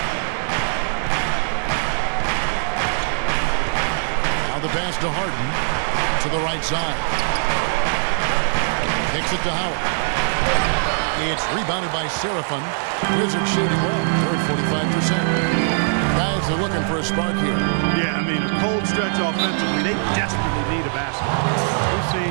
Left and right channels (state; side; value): silent; left; 65 dB below the other